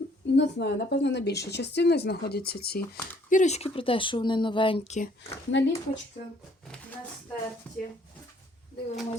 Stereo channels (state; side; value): normal; both; correlation 0.62